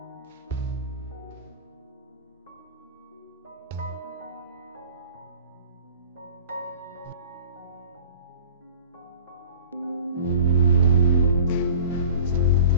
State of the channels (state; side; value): inverted; both; correlation -0.41